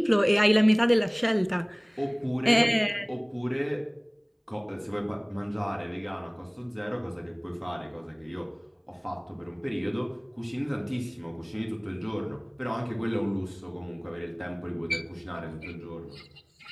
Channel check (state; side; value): identical; both; correlation 1.00